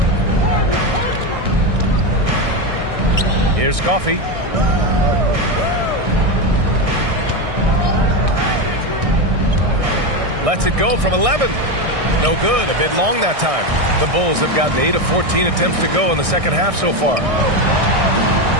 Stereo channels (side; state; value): left; late; 1.6 ms